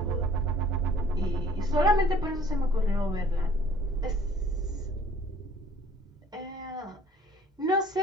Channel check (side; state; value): both; normal; correlation 0.55